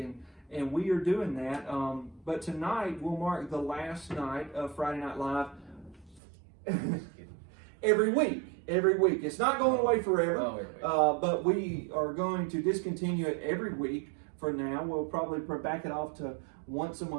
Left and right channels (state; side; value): drops out; left; at 6.2 s